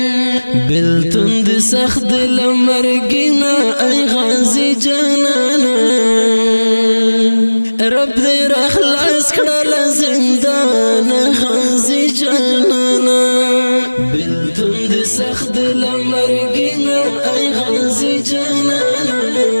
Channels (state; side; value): inverted; both; correlation -1.00